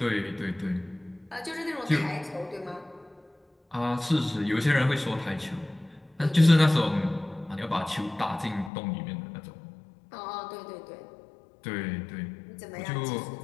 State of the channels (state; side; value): drops out; right; at 8.7 s